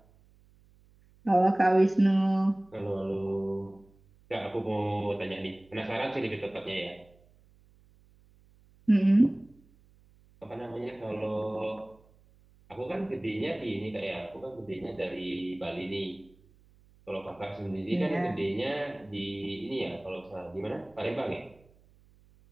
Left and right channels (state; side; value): noise; right; hum, 29 dB below the sound